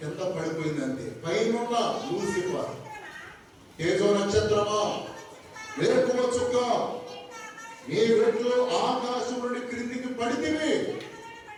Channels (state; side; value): identical; both; correlation 1.00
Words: కింద పడిపోయిందంటే, పైన లూసిఫర్, తేజో నక్షత్రమా, వేకువ చుక్క, నీ వెట్లు ఆకాశం నుండి క్రిందికి పడితివి,